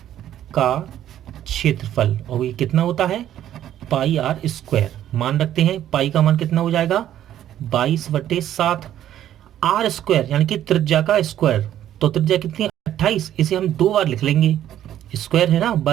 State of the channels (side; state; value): left; quieter; 11.5 dB